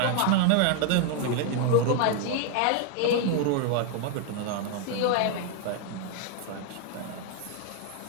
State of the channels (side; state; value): both; different; correlation 0.00